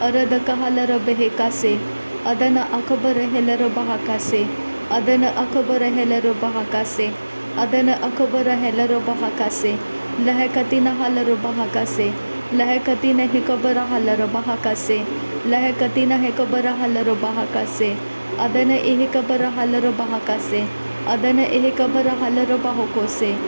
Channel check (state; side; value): inverted; both; correlation -1.00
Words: अरद कहालर बेहेकासे अदन अकबर हेलर बहाकासे अदन अकबर हेलर बहाकासे अदन अकबर हेलर बहाकासे लहकतीन हालर बहाकासे लहकतीन हेकबर हालर बहाकासे लहकतीन हेकबर हालर बहाकासे अदन एहकबर हालर बहाकासे अदन एहकबर हालर बाहोकोसे